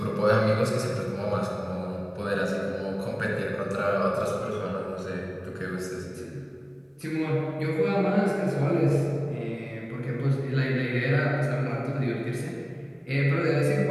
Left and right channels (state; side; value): identical; both; correlation 1.00